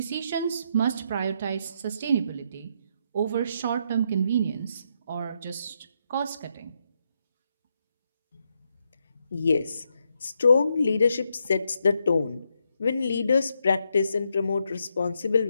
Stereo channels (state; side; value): inverted; both; correlation -0.79